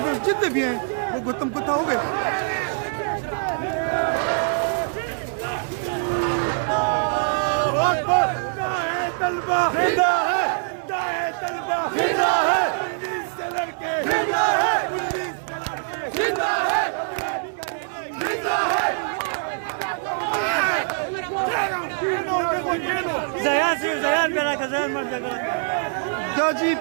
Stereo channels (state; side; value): silent; left; digital silence